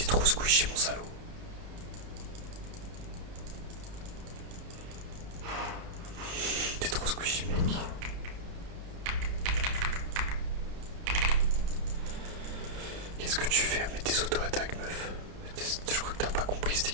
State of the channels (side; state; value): left; late; 31 ms